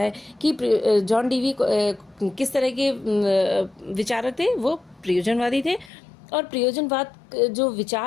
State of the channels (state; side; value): drops out; right; at 5.9 s